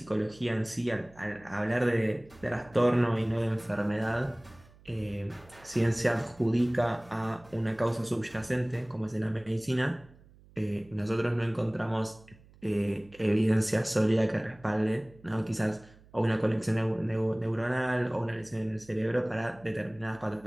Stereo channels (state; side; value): noise; right; hum, 25 dB below the sound